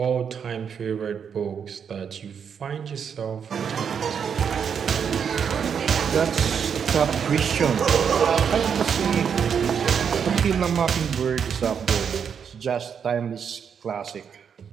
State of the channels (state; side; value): quieter; left; 7.2 dB